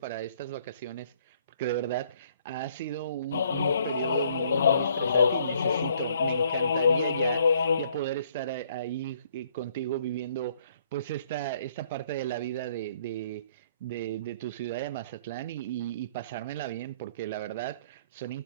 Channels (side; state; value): both; inverted; correlation -0.64